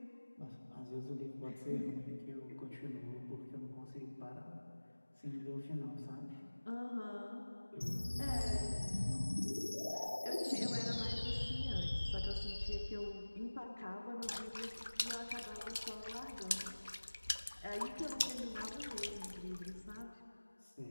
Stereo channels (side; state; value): both; inverted; correlation -1.00